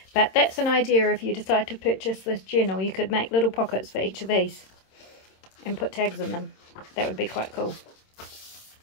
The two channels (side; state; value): right; late; 26 ms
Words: But that's an idea. If you decide to purchase this journal, you could make little pockets for each of these and put tags in them. That would be quite cool.